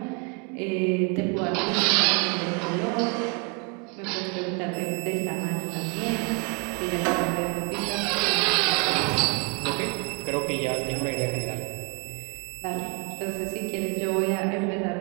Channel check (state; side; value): quieter; left; 32.0 dB